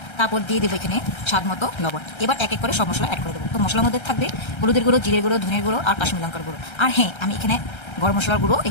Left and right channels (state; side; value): late; right; 1.3 ms